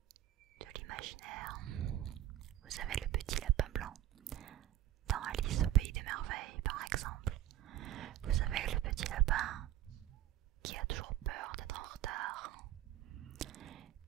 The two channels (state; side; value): quieter; left; 12.9 dB